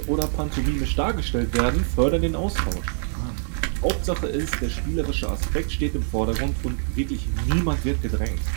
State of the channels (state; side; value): silent; left; digital silence